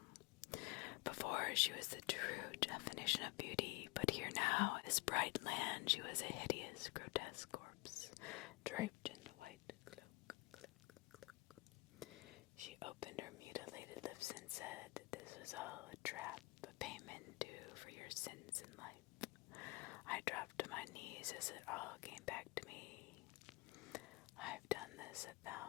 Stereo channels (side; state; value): right; quieter; 25.0 dB